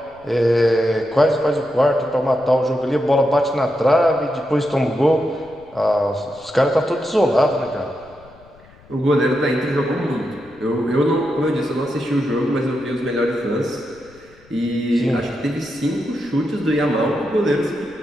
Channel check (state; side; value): noise; left; rumble, 26 dB below the sound